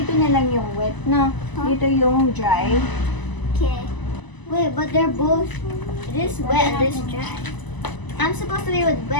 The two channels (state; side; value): late; right; 1.0 ms